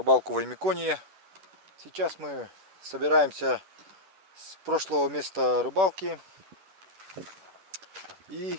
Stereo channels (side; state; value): left; late; 10 ms